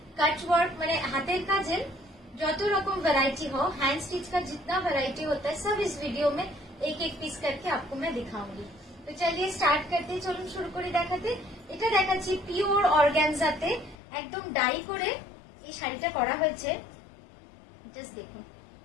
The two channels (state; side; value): drops out; right; at 14.0 s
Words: cut work, মানে हाथेर काजेर যত রকম वैरायटी हो, हैंड स्टिच का जितना वैरायटी होता है सब इस वीडियो में एक एक पीस करके आपको मैं दिखाऊंगी। तो चलिए स्टार्ट करते, चलুন শুরু করে দেখাতে। এটা দেখাচ্ছি পিওর অর্গানজাতে একদম ডাই করে এই শাড়িটা করা হয়েছে। জাস্ট দেখুন,